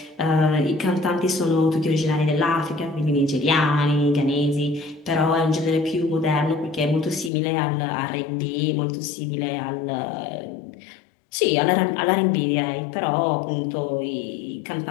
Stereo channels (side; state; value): right; drops out; at 7.3 s